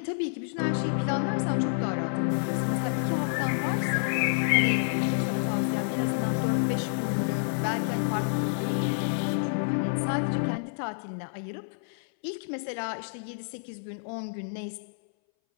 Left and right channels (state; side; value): silent; right; 59 dB below the other